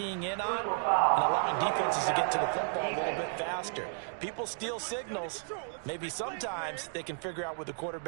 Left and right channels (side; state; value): left; silent; 56 dB below the other